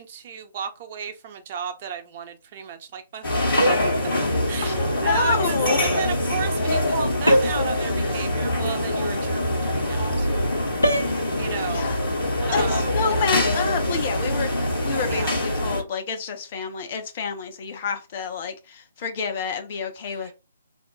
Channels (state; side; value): inverted; both; correlation -0.71